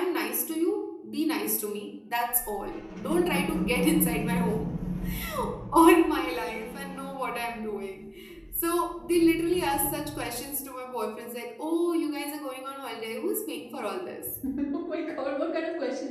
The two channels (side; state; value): both; identical; correlation 1.00